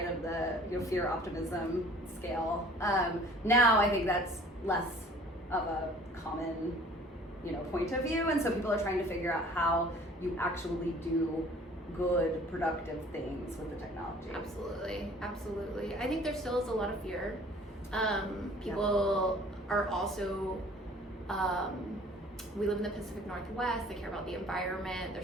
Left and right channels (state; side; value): normal; both; correlation 0.51